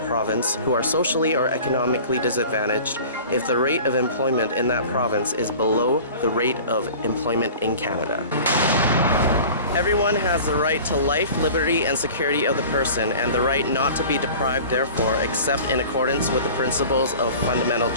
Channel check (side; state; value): both; inverted; correlation -0.41